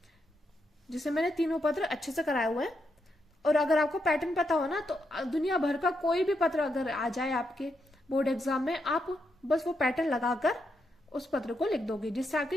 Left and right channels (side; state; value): both; normal; correlation 0.82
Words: जिससे मैंने तीनों पत्र अच्छे से कराए हुए हैं। और अगर आपको पैटर्न पता हो ना तो दुनिया भर का कोई भी पत्र अगर आ जाए आपके बोर्ड एग्जाम में, आप बस वो पैटर्न लगाकर उस पत्र को लिख दोगे, जिससे